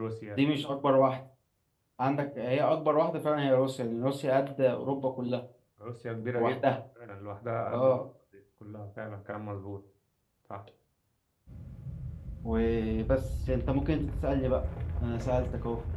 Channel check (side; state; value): both; identical; correlation 1.00